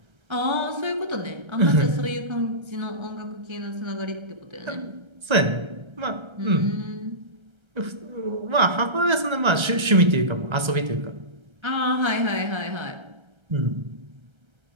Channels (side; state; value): left; late; 1.3 ms